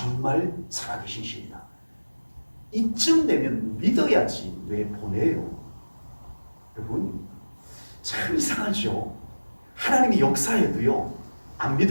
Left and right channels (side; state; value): both; inverted; correlation -1.00